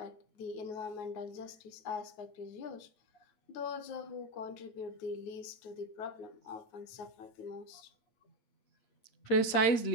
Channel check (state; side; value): late; right; 8.5 ms